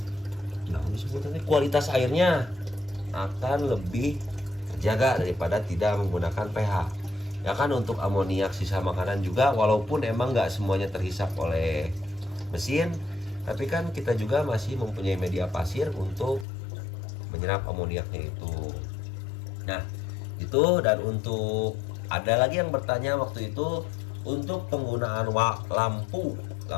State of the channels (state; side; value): drops out; right; at 16.4 s